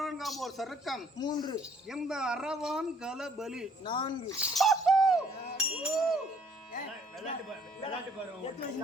ஒரு சருக்கம் 3, இந்த அரவான் கலபலி 4.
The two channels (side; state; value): both; normal; correlation 0.61